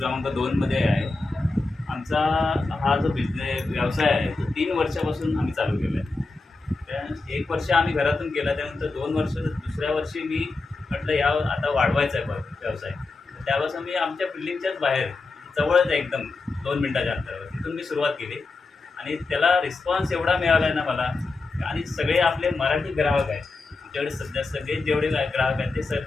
2मध्ये आहे. आमचा हा जो व्यवसाय आहे तो 3 वर्षापासून आम्ही चालू केला आहे. त्या 1 वर्ष आम्ही घरातून केला, त्यानंतर 2 वर्ष, दुसऱ्या वर्षी मी म्हटलं आता वाढवायचा आहे व्यवसाय. त्यापासून मी आमच्या बिल्डिंगच्याच बाहेर जवळच आहे, एकदम 2 मिनिटाच्या अंतरावर, तिथून मी सुरुवात केली. आणि त्याला रिस्पॉन्स एवढा मिळाला आहे ना मला. आणि सगळे आपले मराठी ग्राहक आहेत आमच्याकडे सध्या. सगळे जेवढे ग्राहक आहेत ते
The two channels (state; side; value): quieter; right; 3.6 dB